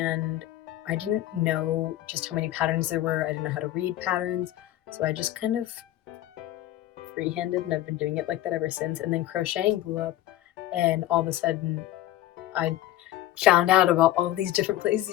I didn't know just how many patterns there were. I didn't know how to read patterns, so I just kind of freehanded, and I've been doing it like that ever since. And then crocheting blew up, and all of a sudden I found out about all these different places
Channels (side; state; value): right; quieter; 14.0 dB